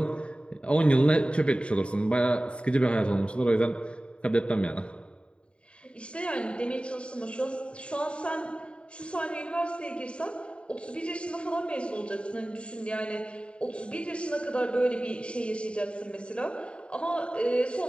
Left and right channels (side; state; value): right; late; 0.056 ms